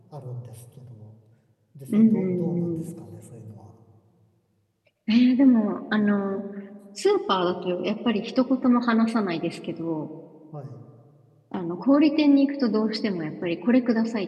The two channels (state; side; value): identical; both; correlation 1.00